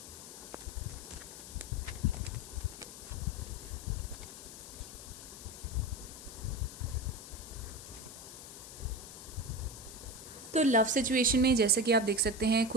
तो लव सिचुएशन में जैसे कि आप देख सकते हैं,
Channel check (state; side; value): noise; left; hiss, 13 dB below the sound